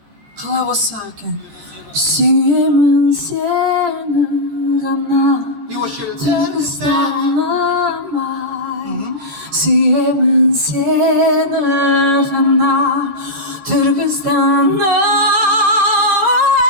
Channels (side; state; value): left; late; 14 ms